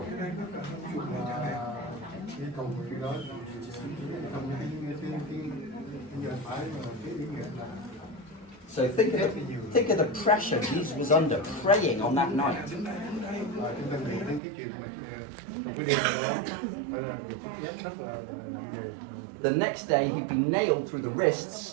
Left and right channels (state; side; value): drops out; left; at 14.4 s